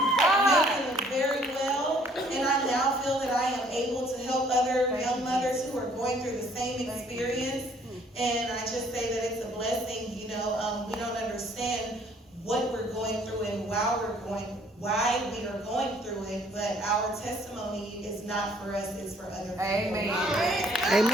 making it very well. And I now feel that I am able to help other young mothers who are going through the same experience. And I just say that it's a blessing. You know, we don't understand what we're going through and why we are going through it, but our testimony is not for us, it's for other people. Amen.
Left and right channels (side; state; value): both; normal; correlation 0.61